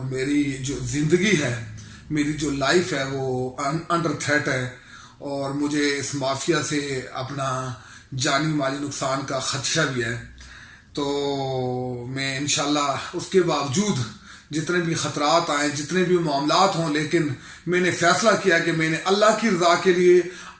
मेरी जो ज़िंदगी है, मेरी जो लाइफ है वो अंडर थ्रेट है और मुझे इस माफिया से अपना जानी माली नुकसान का खदशा भी है। तो मैं इंशाल्लाह उसके बावजूद जितने भी ख़तरात आए, जितने भी मामलात हों, लेकिन मैंने फ़ैसला किया कि मैंने अल्लाह की रज़ा के लिए,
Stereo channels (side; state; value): both; identical; correlation 1.00